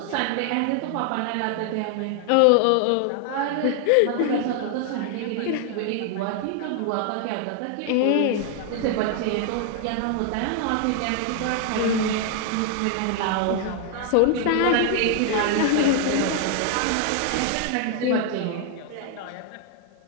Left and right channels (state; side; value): different; both; correlation 0.00